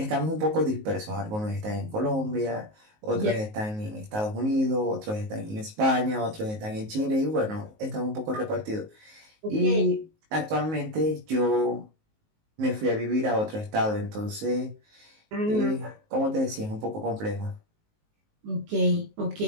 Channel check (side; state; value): left; late; 19 ms